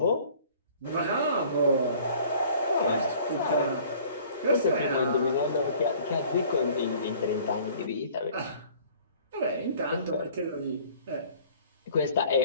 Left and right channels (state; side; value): inverted; both; correlation -0.52